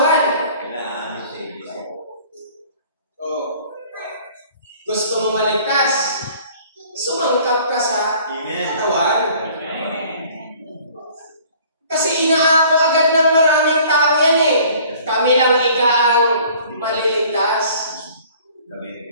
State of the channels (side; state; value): both; inverted; correlation -0.52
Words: Gusto mo maligtas? Sumangkap ka sa katawan. Kasi inaako agad ng maraming tao yan eh. Kami lang ika ang maliligtas.